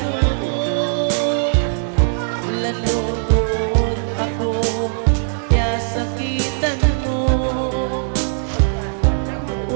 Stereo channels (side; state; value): left; silent; digital silence